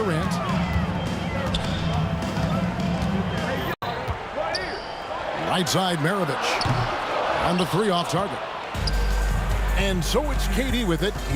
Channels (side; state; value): both; identical; correlation 1.00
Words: Right side, Maravich. On the three off target. And so it's KD with it.